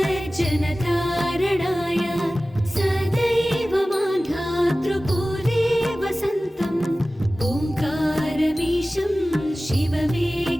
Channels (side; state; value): both; normal; correlation 0.97